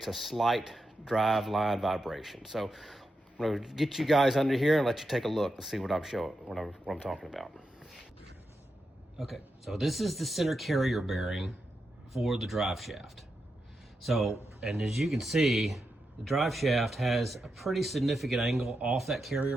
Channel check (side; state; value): both; normal; correlation 0.87